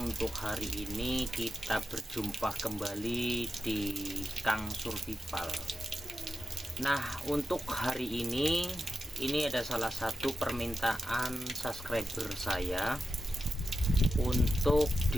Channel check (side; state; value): both; normal; correlation 0.90